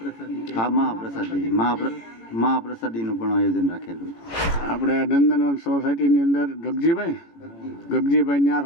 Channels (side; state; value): right; late; 18 ms